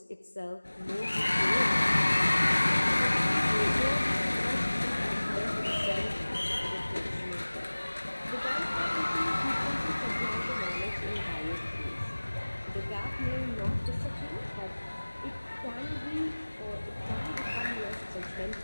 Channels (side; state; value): both; inverted; correlation -1.00